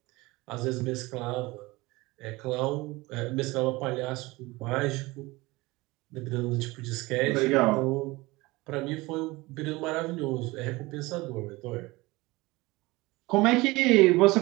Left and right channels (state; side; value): quieter; left; 21.7 dB